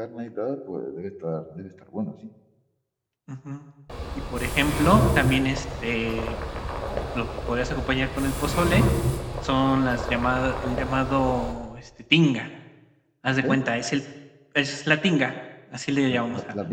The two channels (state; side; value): identical; both; correlation 1.00